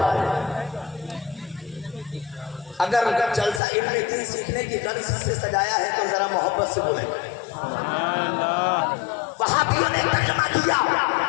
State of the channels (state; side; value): drops out; right; at 3.6 s